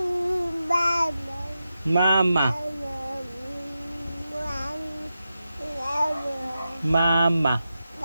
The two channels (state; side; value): inverted; both; correlation -0.90